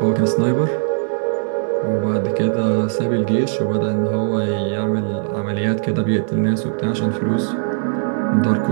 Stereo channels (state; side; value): silent; left; digital silence